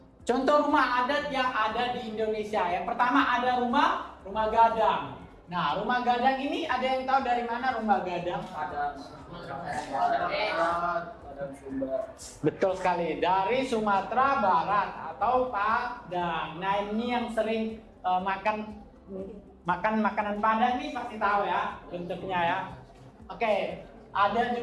contoh rumah adat yang ada di Indonesia. Yang pertama ada rumah gadang. Nah, rumah gadang ini ada yang tahu dari mana rumah gadang? Betul sekali, dari Sumatera Barat atau Padang. Nah, ini yang sering makan makanan Padang ini pasti tahu ya bentuknya ya. Oke, ada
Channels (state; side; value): identical; both; correlation 1.00